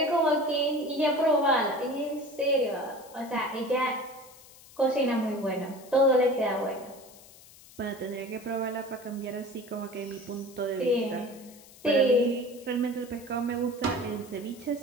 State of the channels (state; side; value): noise; left; hiss, 22 dB below the sound